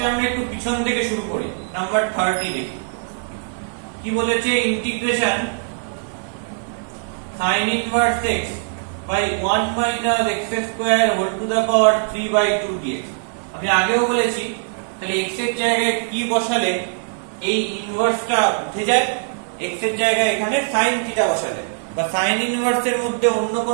আমরা একটু পিছন থেকে শুরু করি, নাম্বার 30 দেখি কি বলেছে। Integration sin inverse x by 1 minus x square whole to the power 3/2 dx। আমি আগেও বলেছি, তাহলে x এর জায়গায় কি বসালে এই ইনভার্সটা উঠে যায়, x এর জায়গায় এখানে sin থিটা বসালে বা sin ইনভার্স এর মধ্যে অন্য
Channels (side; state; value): left; silent; 56 dB below the other